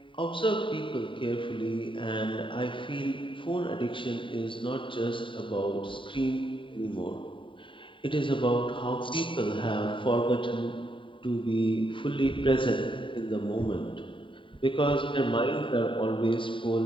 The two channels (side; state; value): right; late; 0.25 ms